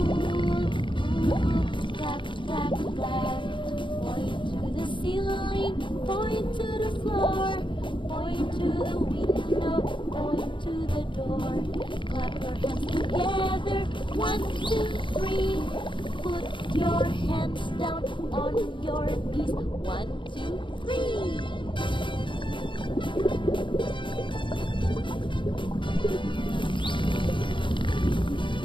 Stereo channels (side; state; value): right; late; 0.24 ms